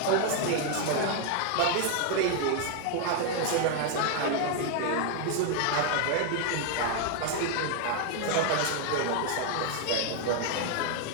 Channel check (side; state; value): both; different; correlation 0.00